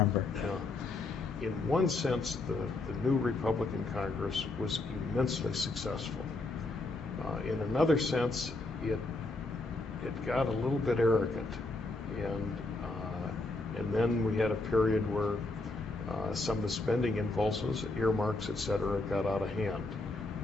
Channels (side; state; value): right; quieter; 3.1 dB